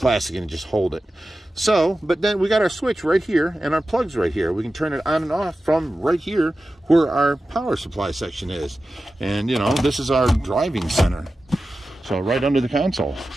and just hold it. So, but then we got our switch right here and our plugs right here. We can turn it on and off from right here where our power supply section is. And, you know, this is our driving center. So right under the console.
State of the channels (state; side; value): normal; both; correlation 0.94